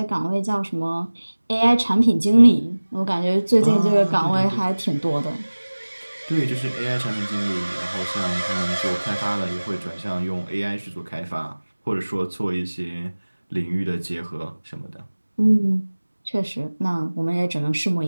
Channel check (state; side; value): inverted; both; correlation -1.00